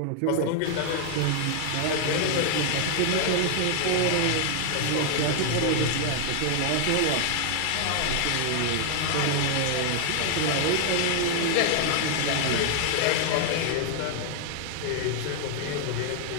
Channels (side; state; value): both; different; correlation 0.00